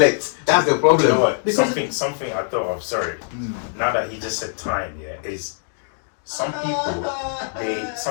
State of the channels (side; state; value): right; silent; digital silence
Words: That's the problem. You know what? Something I thought of. Sorry. Now that he just said time, is some people